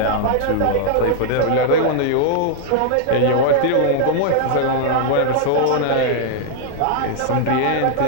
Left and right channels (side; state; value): both; different; correlation -0.01